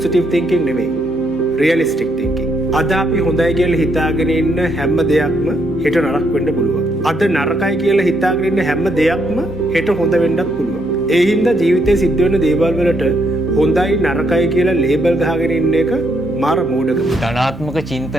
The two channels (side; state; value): both; normal; correlation 0.75